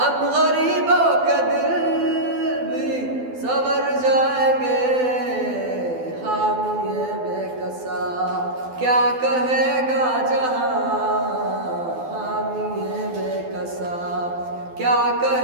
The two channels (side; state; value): left; late; 12 ms